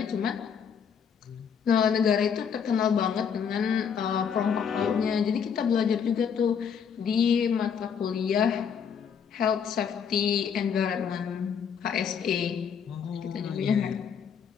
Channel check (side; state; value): right; quieter; 7.2 dB